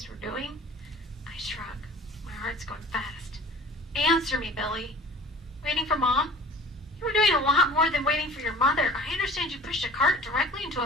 were doing? I shrug. My heart's going fast. Answer me, Billy. Waiting for Mom? You were doing a lot more than waiting for your mother. I understand you pushed a cart directly into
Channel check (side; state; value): both; normal; correlation 0.45